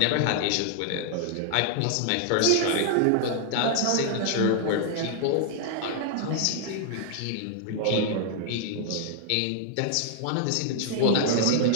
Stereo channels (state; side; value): different; both; correlation 0.00